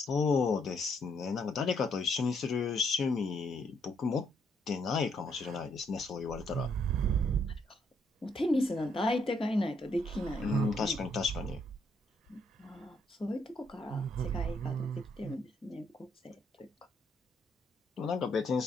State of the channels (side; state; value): both; normal; correlation 0.72